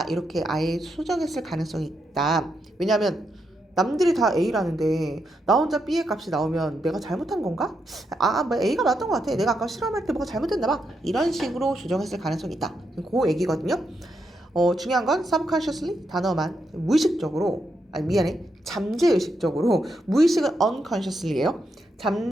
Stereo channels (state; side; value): normal; both; correlation 0.82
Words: 이렇게 아예 수정했을 가능성이 있다. 왜냐하면 남들이 다 A라는데 나 혼자 B의 값이 나오면 내가 잘못한 건가? 뭐 A가 맞던 것 같아. 내가 아까 실험할 때 뭐가 잘못됐나 봐. 이런 식으로 조정했을 가능성이 있다. 그 얘기거든요. 중요한 건 subconsciously 단어만 무의식적으로 미안해. 잠재의식적으로, 무의식은 unconsciously예요.